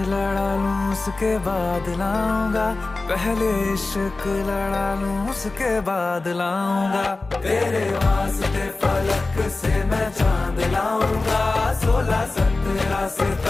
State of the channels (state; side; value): quieter; right; 3.4 dB